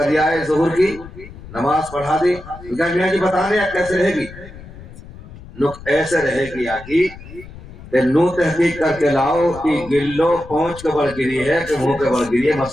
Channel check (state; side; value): noise; left; rumble, 16 dB below the sound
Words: دیا ہے، ظہور کی نماز پڑھا دی. میاں جی بتانے کیسے رہے گی؟ نک ایسے رہے گی آگی کہ نو تحقیق کر کے لاؤ کہ گلو پہنچ کے بڑھ گری ہے کہ منہ کے بڑھ گری ہے.